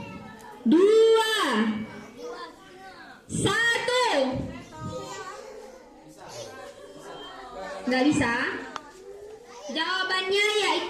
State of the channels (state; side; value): identical; both; correlation 1.00